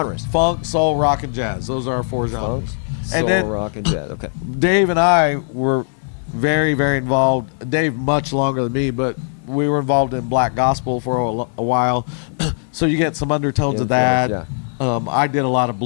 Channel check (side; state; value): right; silent; digital silence